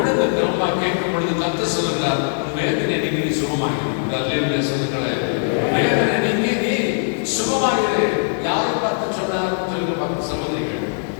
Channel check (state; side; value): silent; right; digital silence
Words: திரும்ப கேட்கும் பொழுது கர்த்தர் சொல்லுகிறார், வேதனை நீங்கி நீ சுகமாகிறது. சொல்லுங்களேன், வேதனை நீங்கி நீ சுகமாகிறது. யாரை பார்த்து சொன்னார் சொல்லுங்க பார்த்து சகோதரிகள்.